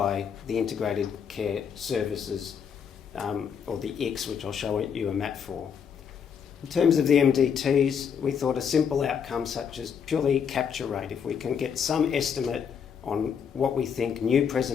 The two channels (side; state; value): right; quieter; 7.3 dB